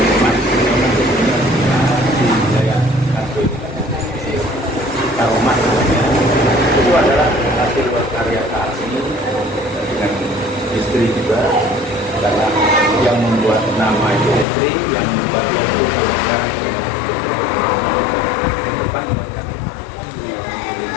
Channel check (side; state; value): right; drops out; at 14.5 s